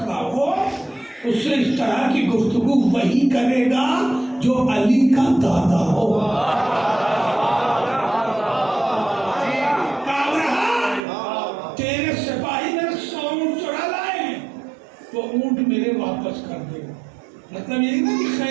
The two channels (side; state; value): left; drops out; at 11.0 s